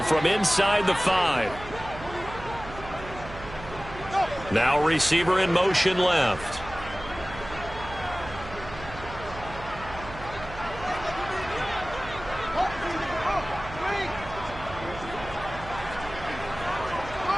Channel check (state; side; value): noise; right; hum, 13 dB below the sound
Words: from inside the 5. Now receiver in motion left.